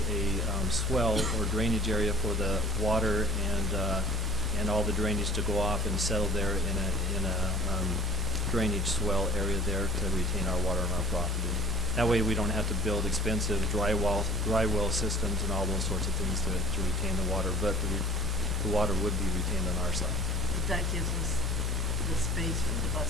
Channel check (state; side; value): normal; both; correlation 0.48